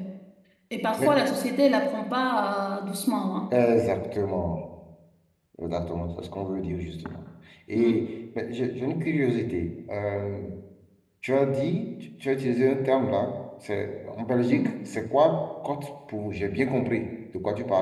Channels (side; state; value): both; identical; correlation 1.00